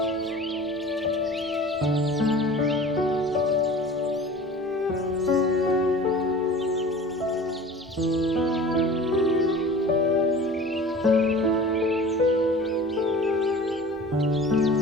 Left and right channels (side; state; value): both; normal; correlation 0.41